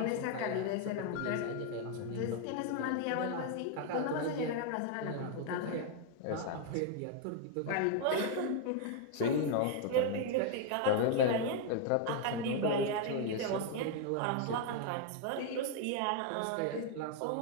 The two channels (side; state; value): both; different; correlation 0.00